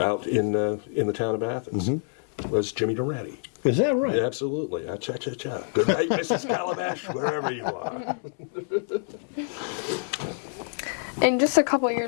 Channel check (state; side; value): silent; right; 60 dB below the other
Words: in the town of Athens, was Jimmy Durante. Is that right? Yeah, absolutely. Cha-cha-cha. Good night, Mrs. Calabash, wherever you are. In just a couple of